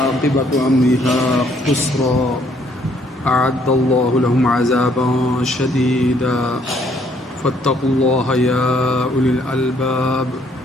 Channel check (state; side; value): normal; both; correlation 0.66